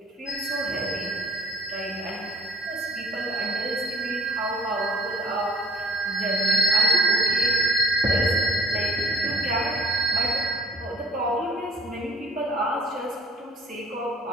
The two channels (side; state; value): both; normal; correlation 0.54